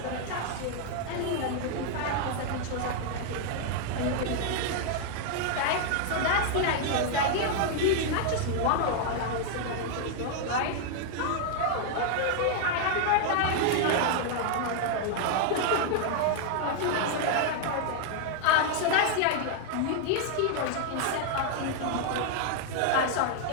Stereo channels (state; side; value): different; both; correlation 0.00